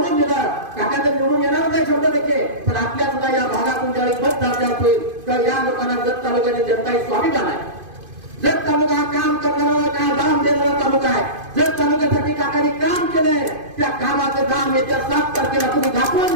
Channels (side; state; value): left; late; 2.5 ms